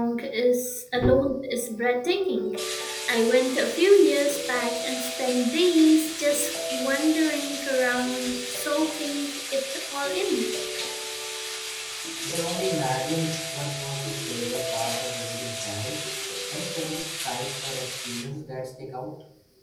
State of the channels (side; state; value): both; identical; correlation 1.00